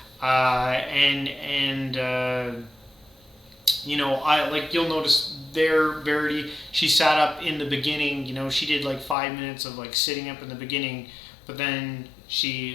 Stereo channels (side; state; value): right; drops out; at 9.2 s